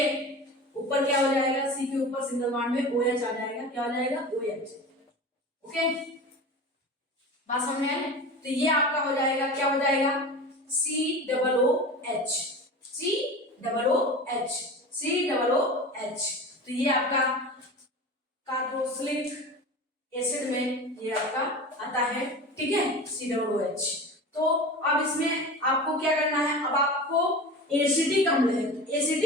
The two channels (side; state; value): both; normal; correlation 0.32